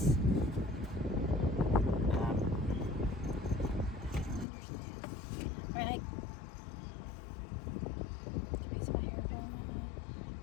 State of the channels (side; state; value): right; drops out; at 4.5 s